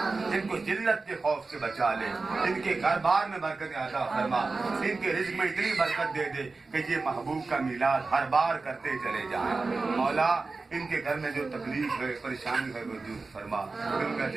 ان کو ذلت کے خوف سے بچا لے, ان کے گھر بار میں برکت عطا فرما. ان کے رزق میں اتنی برکت دے دے کہ یہ محبوب کا میلاد ہر بار کرتے چلے جائیں. مولا ان کے گھر میں جو تکلیف ہے, پریشانی ہے وہ دور فرما. دنیا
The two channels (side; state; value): left; quieter; 3.9 dB